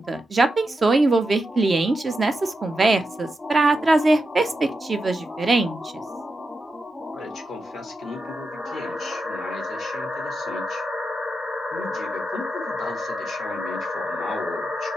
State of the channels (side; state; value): both; normal; correlation 0.88